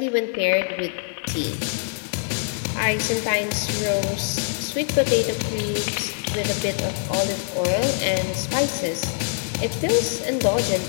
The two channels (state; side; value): silent; right; 63 dB below the other